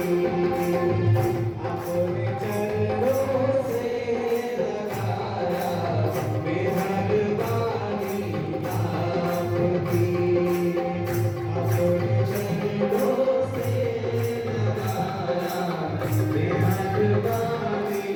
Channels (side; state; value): both; identical; correlation 1.00